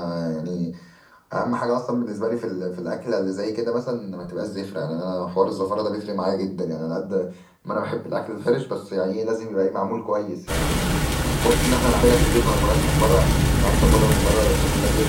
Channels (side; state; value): both; identical; correlation 1.00